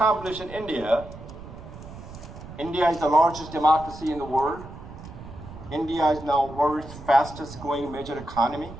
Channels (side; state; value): right; noise; rumble, 14 dB below the sound